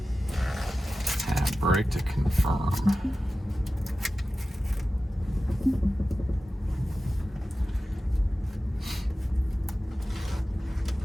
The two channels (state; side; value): normal; both; correlation 0.94